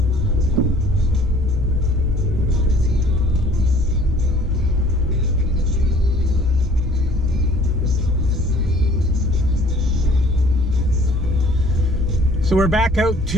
So we're back out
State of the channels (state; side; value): normal; both; correlation 0.54